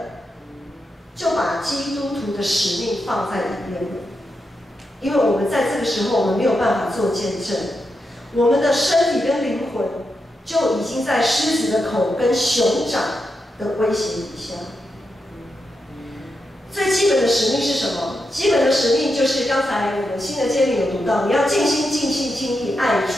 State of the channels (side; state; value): both; normal; correlation 0.86